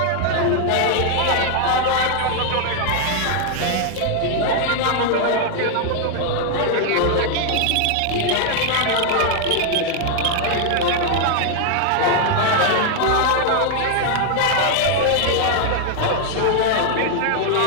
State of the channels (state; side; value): different; both; correlation 0.00